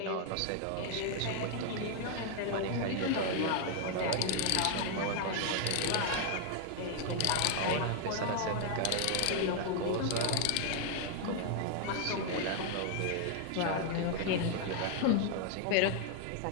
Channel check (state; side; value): different; both; correlation 0.00